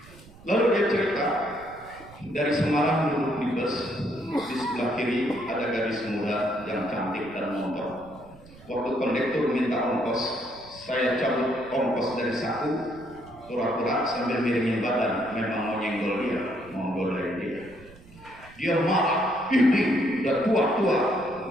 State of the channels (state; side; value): noise; right; rumble, 22 dB below the sound